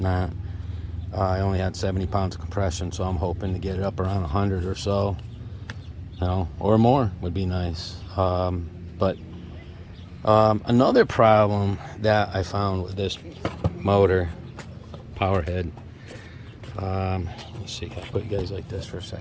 I only had 70 pounds of compression, so I'm hoping to get it up around 100 or so, or more would be nice. But another problem that I found with this motor, powerhead, let's see, can I put you guys like this for a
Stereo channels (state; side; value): identical; both; correlation 1.00